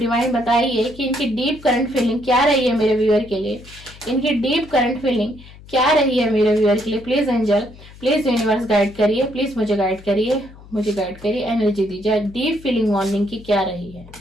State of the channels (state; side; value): noise; left; hum, 20 dB below the sound